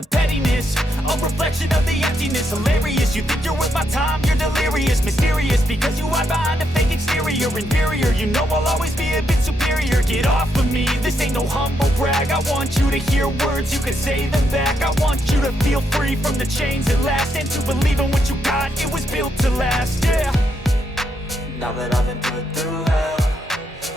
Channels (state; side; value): normal; both; correlation 0.79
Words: pettiness, a reflection of the emptiness. Hilarious, you think you're worth my time, you're delirious. Mysterious, because you hide behind a fake exterior. Inferior, you know I'll always be a bit superior. Get off of me, this ain't no humble brag. I want you to hear words, you can say them back. I want you to feel free from the chains at last, and to believe in what you got, it was built to last, yeah. Now that I've been put through hell,